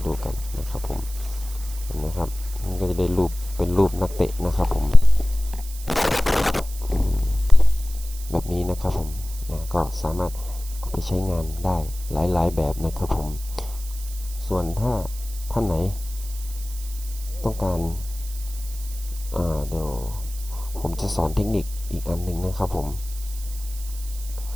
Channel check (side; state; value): right; noise; hiss, 15 dB below the sound